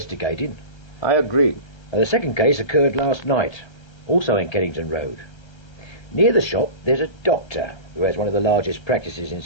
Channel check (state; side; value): late; right; 1.3 ms